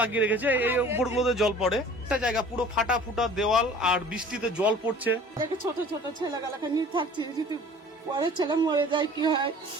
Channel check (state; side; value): normal; both; correlation 0.47